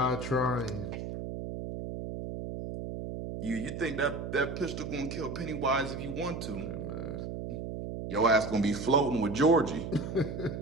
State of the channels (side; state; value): right; noise; hum, 6 dB below the sound